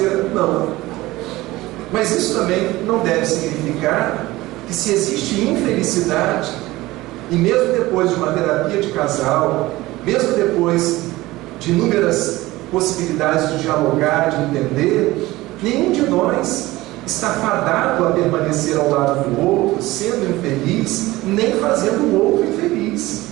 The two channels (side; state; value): left; quieter; 18.7 dB